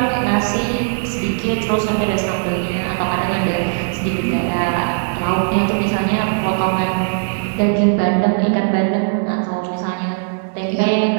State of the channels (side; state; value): left; silent; digital silence